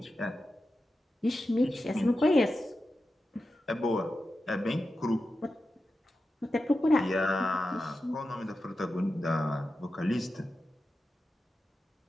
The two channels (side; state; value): both; normal; correlation 0.91